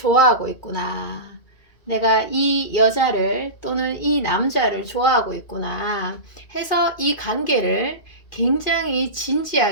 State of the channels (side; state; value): right; late; 2.4 ms